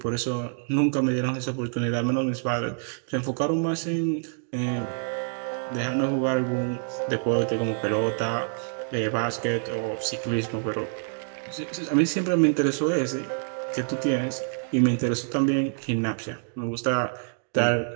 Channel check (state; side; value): silent; left; digital silence